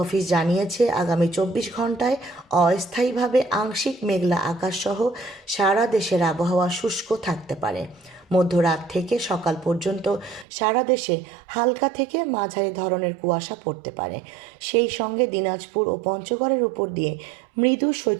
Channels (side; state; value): left; drops out; at 10.5 s